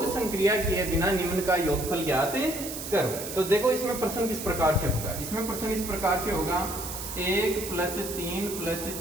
संक्रिया किए बिना निम्न का योगफल ज्ञात करो। तो देखो इसमें प्रश्न किस प्रकार से होगा। इसमें प्रश्न इस प्रकार से होगा 1 + 3 +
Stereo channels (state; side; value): noise; right; hiss, 8 dB below the sound